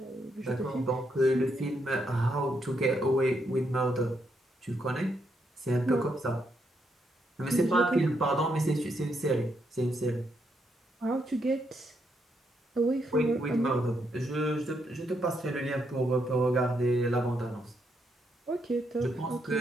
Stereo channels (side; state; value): both; normal; correlation 0.78